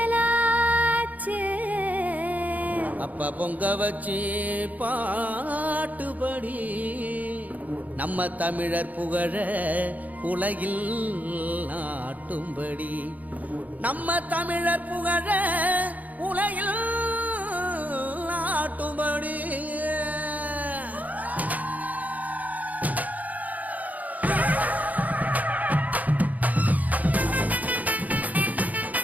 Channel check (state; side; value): late; left; 0.077 ms